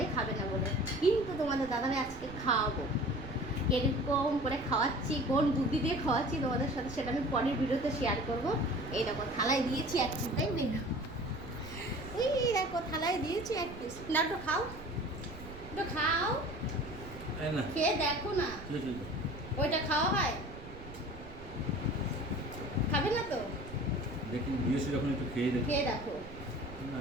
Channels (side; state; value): right; noise; rumble, 15 dB below the sound